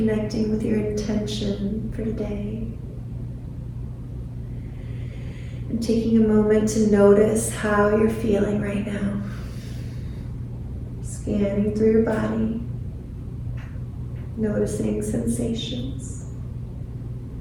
with your intention for today. And taking a moment to notice how you're feeling right now. Scanning through your body, noticing sensations.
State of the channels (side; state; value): both; identical; correlation 1.00